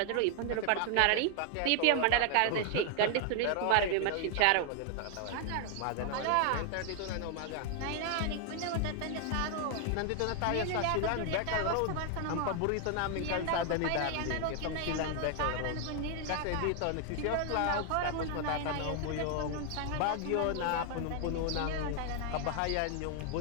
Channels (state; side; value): different; both; correlation 0.00